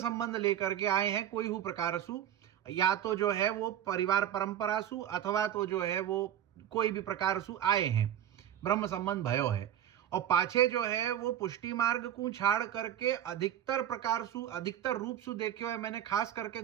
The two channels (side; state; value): left; quieter; 10.9 dB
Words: लेकर के आए हैं कोई हु प्रकार सु, या तो जो है वो परिवार परंपरा सु अथवा तो जो है वो कोई भी प्रकार सु आए हैं, ब्रह्म संबंध भयो है, और पाछे जो है वो पुष्टि मार्ग को छाड़ करके अधिकतर प्रकार सु अधिकतर रूप सु देखे हुए मैंने, खास करके